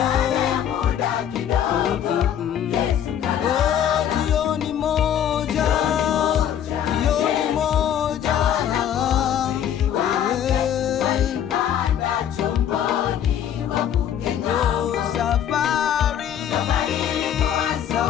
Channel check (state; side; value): quieter; right; 9.7 dB